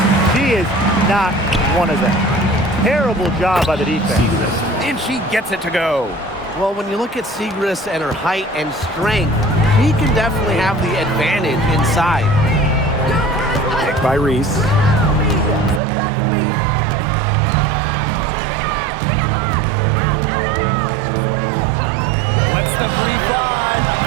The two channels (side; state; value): left; drops out; at 15.8 s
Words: She is not one of them. Terrible job by the defense. And she gets it to go. Well, when you look at Siegrist and her height and strength, he can definitely have the advantage inside. Picked by Reese. the 3-5.